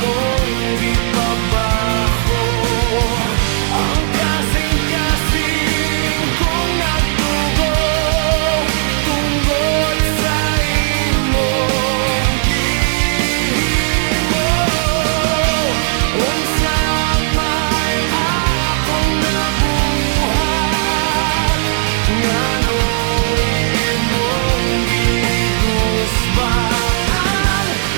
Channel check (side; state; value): left; silent; 66 dB below the other